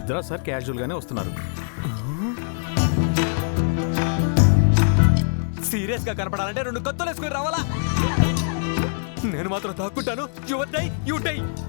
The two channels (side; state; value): right; silent; digital silence